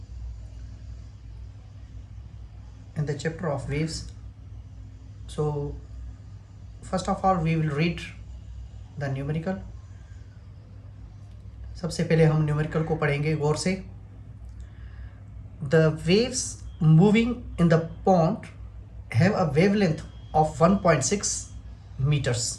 in the chapter of waves. So first of all we will read the numerical. सबसे पहले हम numerical को पढ़ेंगे गौर से। The waves moving in the pond have a wavelength of 1.6 meters.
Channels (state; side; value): identical; both; correlation 1.00